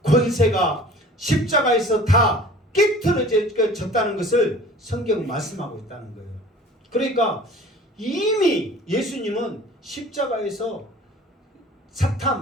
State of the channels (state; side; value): normal; both; correlation 0.45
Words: 권세가 십자가에서 다 깨트려졌다는 것을 성경은 말씀하고 있다는 거예요. 그러니까 이미 예수님은 십자가에서